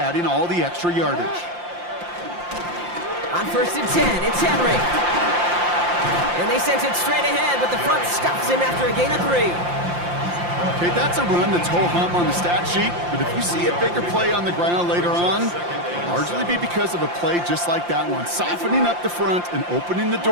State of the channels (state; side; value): late; left; 5.7 ms